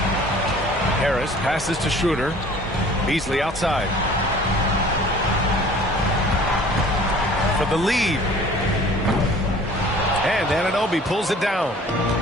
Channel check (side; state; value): both; normal; correlation 0.49